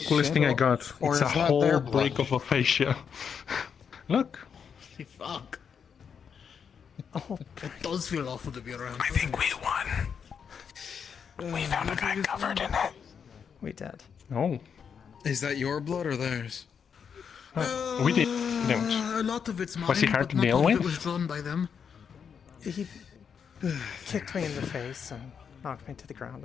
coolest thing I got. Or It's a is that whole their break of aphasia. Look. Fuck. Oh, it does feel awful to be around. I think we won. We found a guy covered in it. We did. Oh. Is that your blood or theirs? We did. A lot of it's mine, Was he hard but to not deal all of with? it was drawn by them. He kicked me in the face and knocked me to the ground,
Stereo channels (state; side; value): quieter; right; 6.9 dB